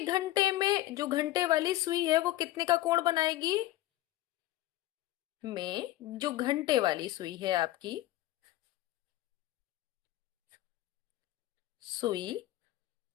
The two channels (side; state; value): right; quieter; 16.0 dB